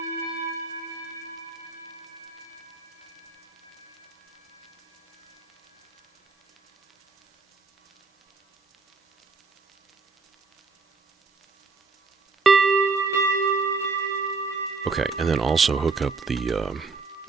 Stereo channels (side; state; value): left; quieter; 4.3 dB